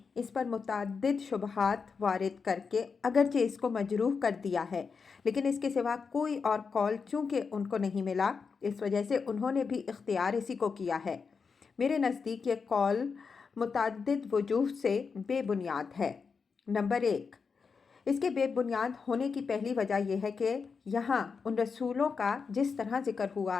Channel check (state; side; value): quieter; right; 5.4 dB